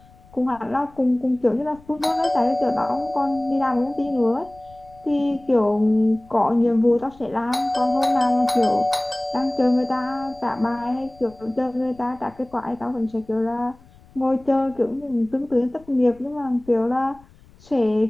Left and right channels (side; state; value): left; noise; rumble, 26 dB below the sound